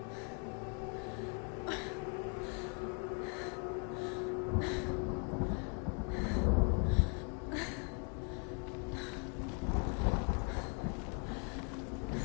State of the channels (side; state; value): right; quieter; 36.4 dB